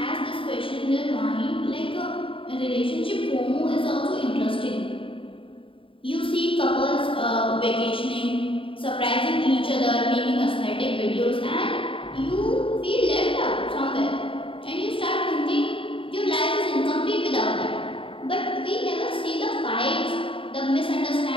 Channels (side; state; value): right; late; 0.25 ms